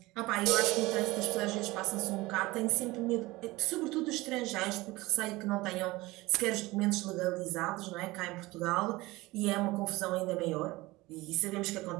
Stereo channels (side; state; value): left; quieter; 20.5 dB